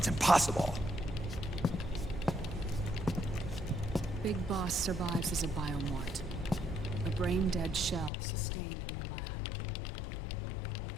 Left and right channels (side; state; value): right; drops out; at 8.1 s